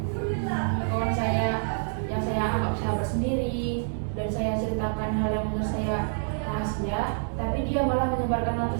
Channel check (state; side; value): silent; left; digital silence